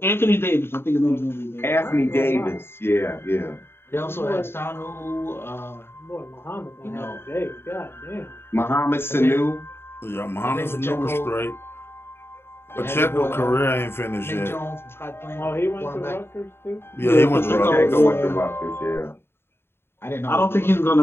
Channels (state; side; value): late; right; 0.11 ms